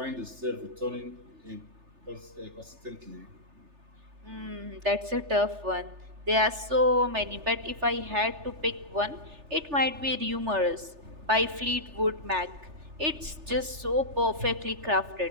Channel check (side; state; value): left; late; 3.3 ms